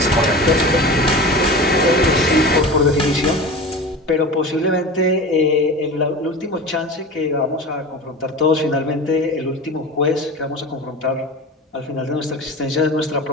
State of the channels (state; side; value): normal; both; correlation 0.32